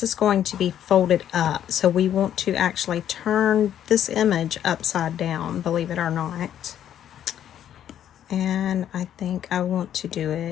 is going to be folded up, so we want to actually turn this image upside down, believe it or not. And I think I want to do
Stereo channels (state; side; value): quieter; right; 10.4 dB